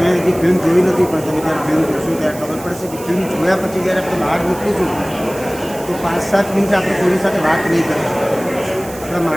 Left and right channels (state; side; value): noise; right; hiss, 16 dB below the sound